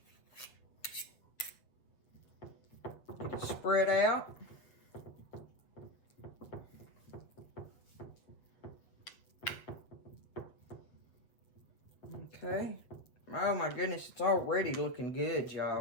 Get it spread out. Okay. Oh my goodness, it's already looking good,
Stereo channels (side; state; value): right; late; 7.8 ms